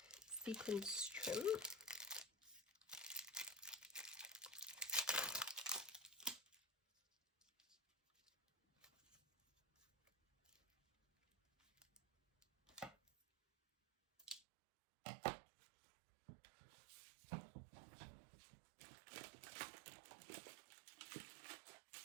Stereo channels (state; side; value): drops out; left; at 14.4 s